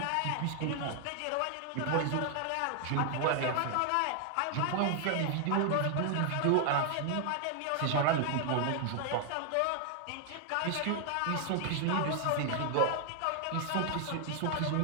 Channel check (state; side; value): different; both; correlation 0.00